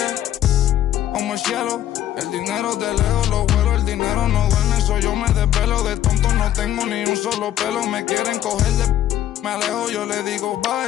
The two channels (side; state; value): right; quieter; 12.1 dB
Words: Como el cielo, el dinero de lejos lo vuelo, el dinero no duerme, eso yo me desvelo. De tonto no tengo ni un solo pelo, me quieren coger de... Me alejo, yo le digo